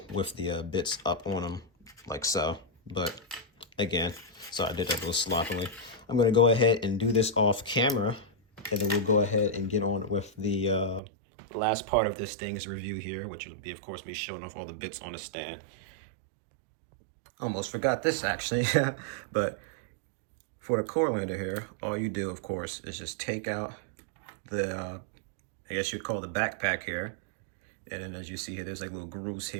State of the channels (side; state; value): left; drops out; at 11.0 s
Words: with the bits up on them like so. But again, so I did that a little sloppily. I'm going to go ahead and do this off camera, and then we'll go ahead and get on with the last part of this thing's review here, which will be, of course, me showing off all the bits on the stand. Almost forgot this, actually. But for the core lander here, all you do, of course, is just take out the, I guess you'd call the backpack here. And then as you see here, there's like little grooves